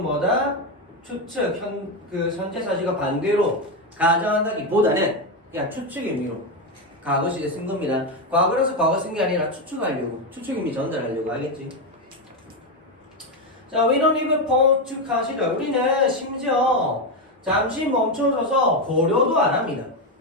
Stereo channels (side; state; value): both; normal; correlation 0.09